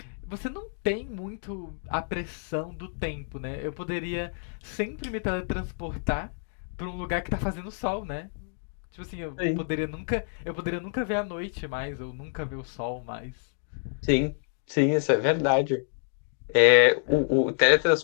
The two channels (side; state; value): right; silent; digital silence